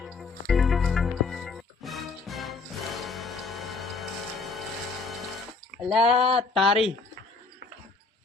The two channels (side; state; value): right; quieter; 4.1 dB